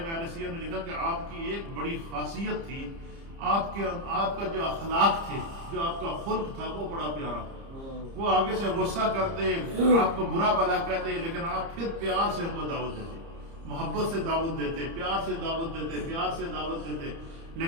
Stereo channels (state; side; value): late; left; 30 ms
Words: میں اہل سیرت نے لکھا کہ آپ کی ایک بڑی خاصیت تھی، آپ کا جو اخلاق تھے، جو آپ کا خلق تھا وہ بڑا پیارا تھا. وہ آگے سے غصہ کرتے، آپ کو برا بھلا کہتے، لیکن آپ پھر پیار سے ان کو دعوت دیتے، محبت سے دعوت دیتے، پیار سے دعوت دیتے، پیار سے دعوت دیتے.